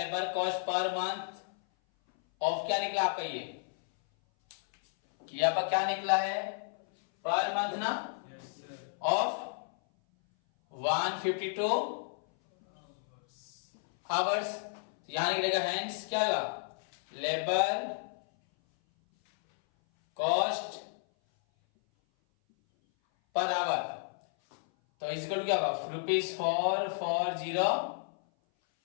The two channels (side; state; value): right; silent; 56 dB below the other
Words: cost per month of क्या निकला आपका? ये आपका क्या निकला है? पर मंथ ना, ऑफ 152 आवर्स। यहां निकलेगा हेंस क्या होगा? लेबर कॉस्ट पर आवर तो इजिकल क्या होगा?